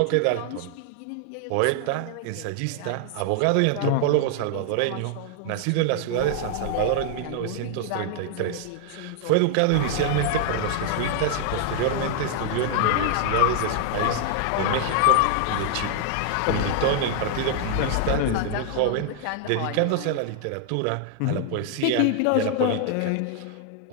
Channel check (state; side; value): different; both; correlation 0.00